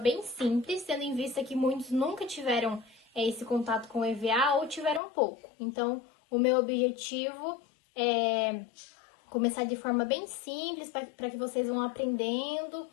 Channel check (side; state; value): right; drops out; at 5.0 s